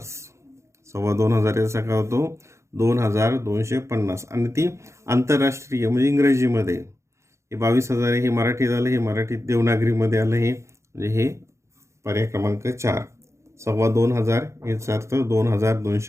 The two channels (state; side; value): late; left; 0.14 ms